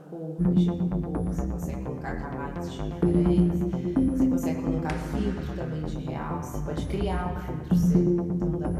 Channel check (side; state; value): both; identical; correlation 1.00